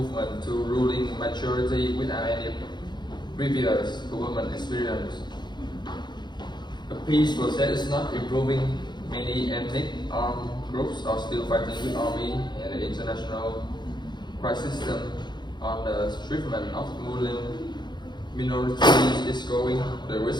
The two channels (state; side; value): late; right; 0.21 ms